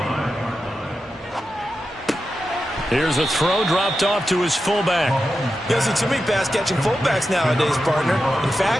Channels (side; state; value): both; normal; correlation 0.90